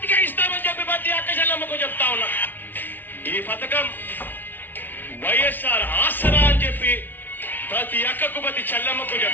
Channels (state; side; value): late; right; 0.091 ms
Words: ఇస్తామని చెప్పి ప్రతి అక్క చెల్లెమ్మకు చెప్తా ఉన్నా. ఈ పథకం వైఎస్ఆర్ ఆసరా అని చెప్పి ప్రతి అక్కకు ప్రతి చెల్లెమ్మకు